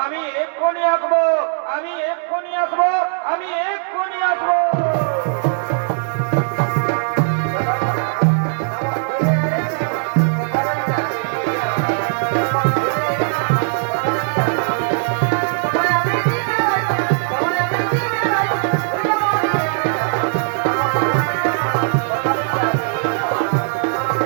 আমি এক্ষুনি আসবো আমি এক্ষুনি আসবো আমি এক্ষুনি আসবো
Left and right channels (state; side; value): silent; left; digital silence